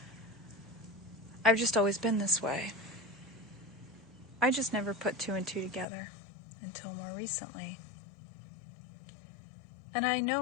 I've just always been this way. I just never put two and two together until more recently. And I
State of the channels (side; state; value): right; drops out; at 5.9 s